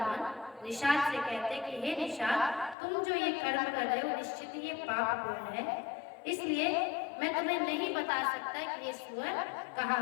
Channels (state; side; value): drops out; right; at 2.8 s